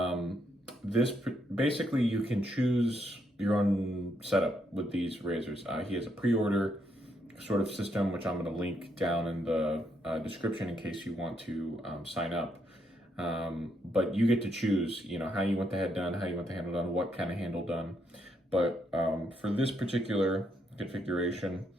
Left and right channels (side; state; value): both; normal; correlation 0.76